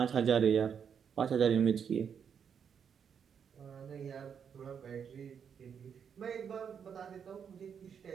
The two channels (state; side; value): quieter; left; 7.4 dB